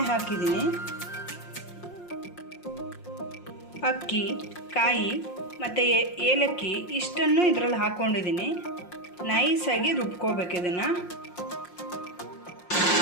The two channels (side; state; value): right; late; 5.6 ms